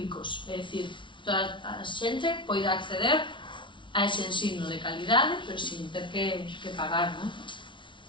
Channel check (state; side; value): late; right; 0.24 ms